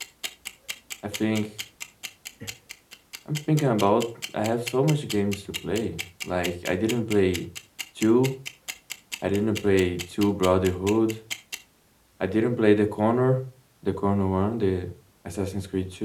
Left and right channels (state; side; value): identical; both; correlation 1.00